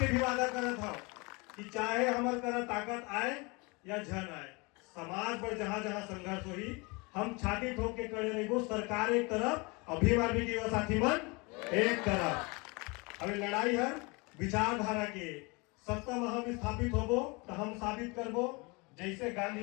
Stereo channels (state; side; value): quieter; right; 27.8 dB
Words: भी वादा करत था कि चाहे हमारे तरह ताकत आए या झन आए, समाज पर जहां जहां संघर्ष हुई हम छाती ठोक के खड़े रहेंगे। सरकार एक तरफ, अभिमान भी युवा साथी मन एक तरफ। अभी लड़ाई हर विचारधारा के सत्ता में हम स्थापित होबो तो हम साबित करबो, जैसे